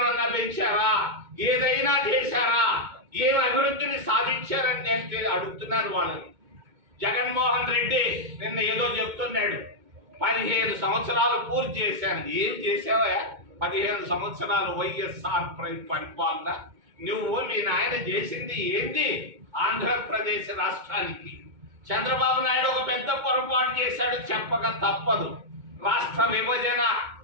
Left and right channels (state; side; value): late; left; 2.2 ms